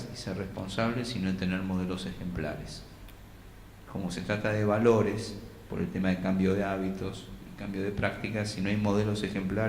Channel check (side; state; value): both; identical; correlation 1.00